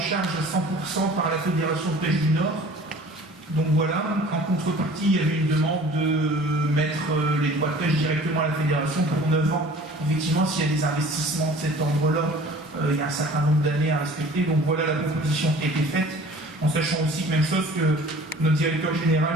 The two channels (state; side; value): normal; both; correlation 0.47